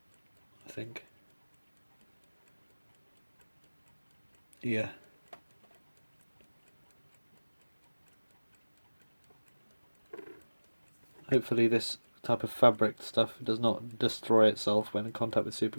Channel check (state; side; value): inverted; both; correlation -1.00